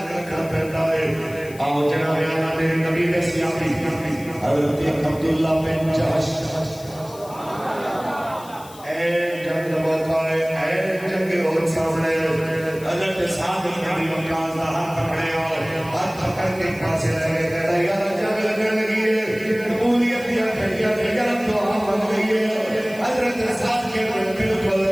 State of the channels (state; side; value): noise; left; hiss, 20 dB below the sound